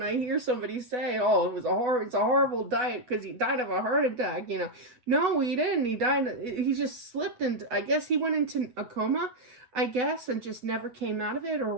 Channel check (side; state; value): left; late; 8.1 ms